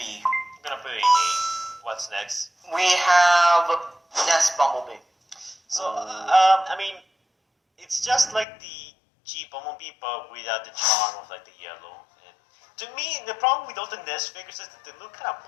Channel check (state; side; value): drops out; right; at 8.5 s